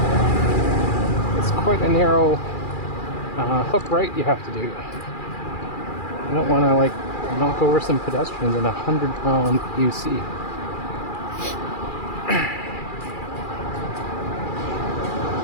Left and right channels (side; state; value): right; late; 2.4 ms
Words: It's quite a narrow hook right you have to do. You don't want to like knock over some pedestrians in a 100-pound UC.